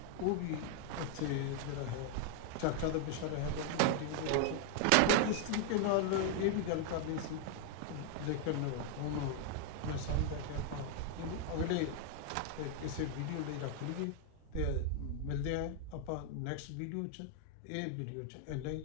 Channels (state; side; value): different; both; correlation 0.00